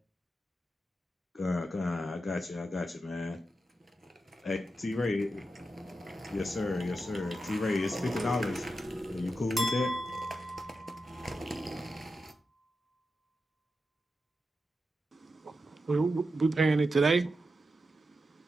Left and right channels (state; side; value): normal; both; correlation 0.89